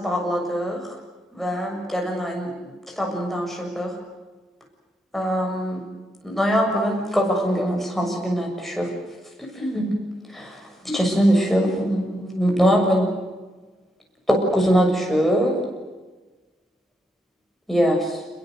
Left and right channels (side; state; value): both; normal; correlation 0.80